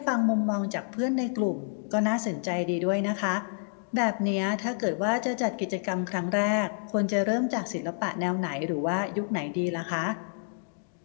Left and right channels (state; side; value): silent; right; digital silence